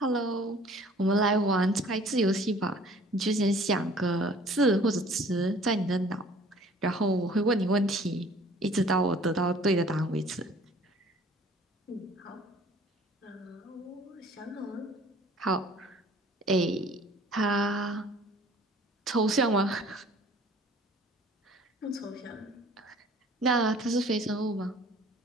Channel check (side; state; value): both; normal; correlation 0.52